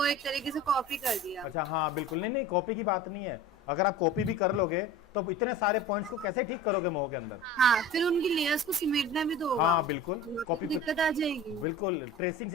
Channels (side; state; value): both; normal; correlation 0.37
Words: एक तरीके से कॉपी कर दिया। अच्छा हाँ बिल्कुल, नहीं नहीं कॉपी की बात नहीं है। अगर आप कॉपी भी कर लोगे तो इतने सारे पॉइंट्स को कैसे ठीक करोगे मोह के अंदर? हाँ, फिर उनकी लेयर्स को सिमेटना भी तो होगा। हाँ बिल्कुल, कॉपी दिक्कत आ जाएगी। बिल्कुल ट्रेसिंग